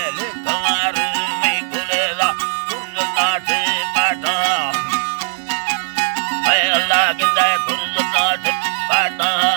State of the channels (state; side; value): silent; left; digital silence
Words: लिखवार में गुलेला कुर्नाटे पाटा ay Allah ginda kurzat पाटा